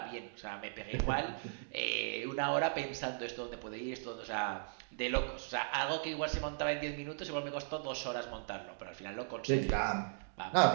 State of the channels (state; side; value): silent; left; digital silence